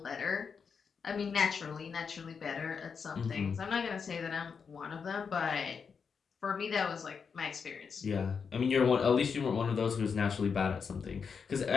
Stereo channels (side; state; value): right; quieter; 6.0 dB